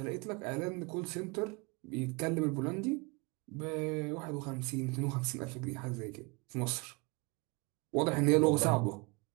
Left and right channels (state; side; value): quieter; left; 28.6 dB